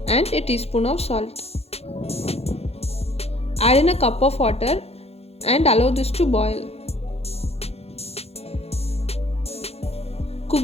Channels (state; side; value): late; right; 0.30 ms